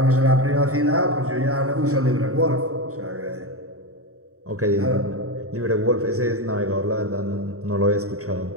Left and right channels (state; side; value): late; left; 0.65 ms